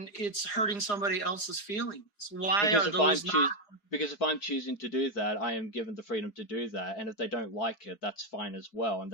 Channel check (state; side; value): late; right; 4.9 ms